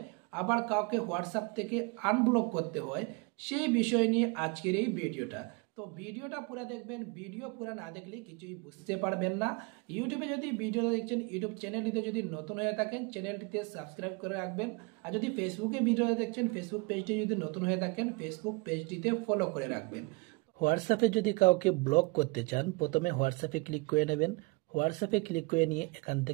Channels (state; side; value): quieter; left; 27.9 dB